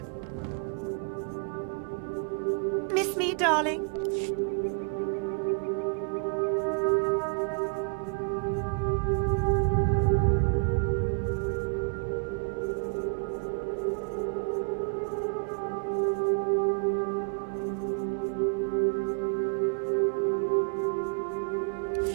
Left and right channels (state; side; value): quieter; left; 39.8 dB